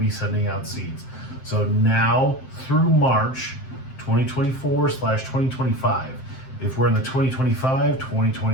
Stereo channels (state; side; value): late; right; 7.7 ms